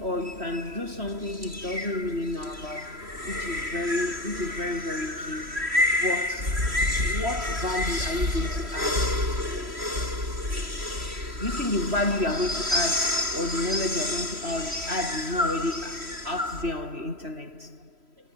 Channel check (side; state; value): left; late; 3.1 ms